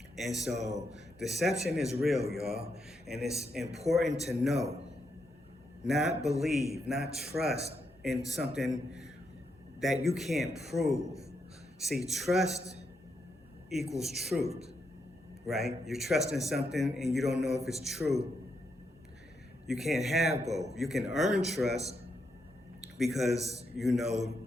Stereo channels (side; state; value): both; normal; correlation 0.81